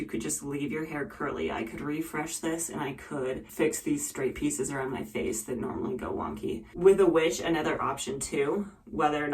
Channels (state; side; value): identical; both; correlation 1.00